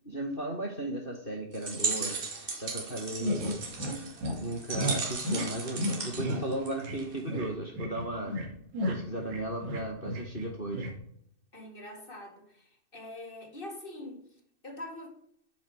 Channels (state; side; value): late; right; 2.6 ms